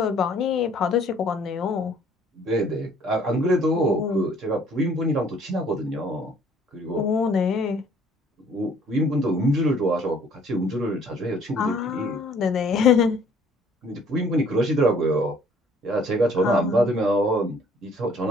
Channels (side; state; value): both; normal; correlation 0.58